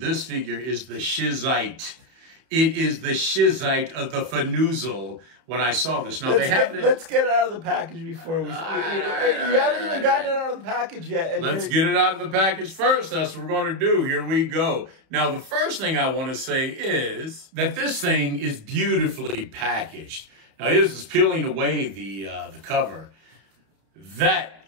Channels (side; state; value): left; late; 31 ms